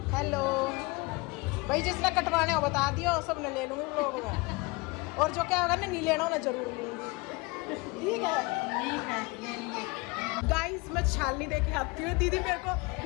हेलो भाई, जिसने कटवाने हो बता दियो, सब ने ले लूंगी लोग में, और जो क्या होगा ना नहीं लेना हो ना जरूर लूंगी। ठीक है गाइस, मैं छालनी देके आती हूँ। दीदी मेरे को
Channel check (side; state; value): right; quieter; 25.8 dB